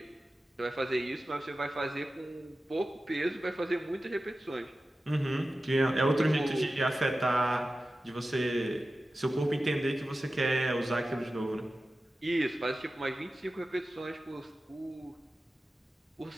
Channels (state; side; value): normal; both; correlation 0.94